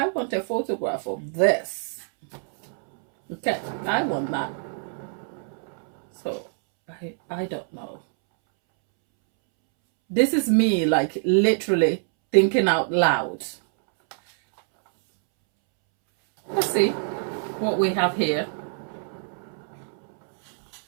want a photograph of this. Okay, I want that. So, I don't know. This is me, like, literally thinking out loud. Let's see what we have here.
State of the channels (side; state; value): left; silent; 62 dB below the other